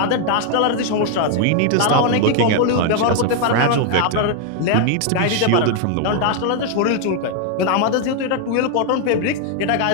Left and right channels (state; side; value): different; both; correlation 0.00